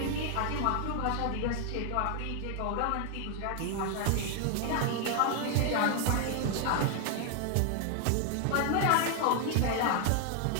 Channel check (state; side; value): different; both; correlation 0.00